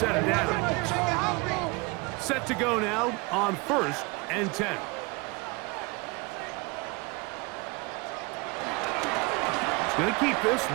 of downs. Set to go now on 1st and 10. He's going to keep this,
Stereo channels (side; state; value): left; quieter; 27.0 dB